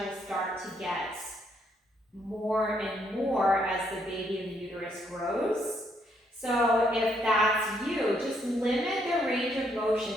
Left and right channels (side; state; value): both; normal; correlation 0.72